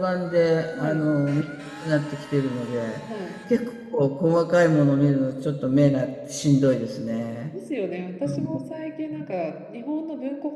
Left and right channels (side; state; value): both; identical; correlation 1.00